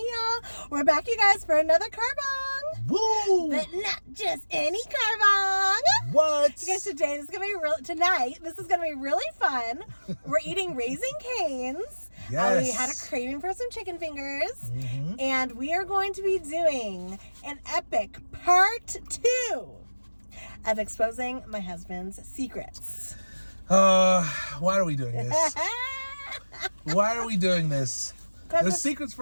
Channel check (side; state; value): both; inverted; correlation -1.00